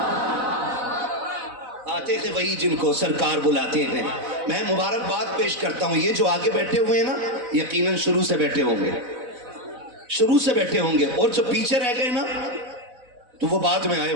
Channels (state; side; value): late; left; 4.0 ms